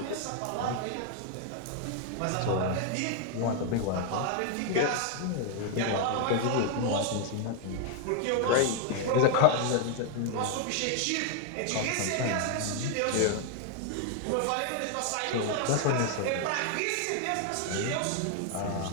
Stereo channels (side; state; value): both; different; correlation 0.00